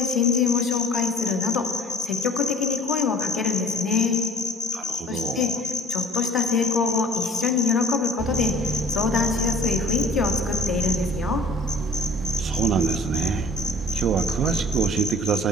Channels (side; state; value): both; normal; correlation 0.47